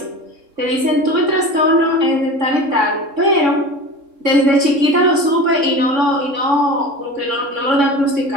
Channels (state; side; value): late; left; 3.6 ms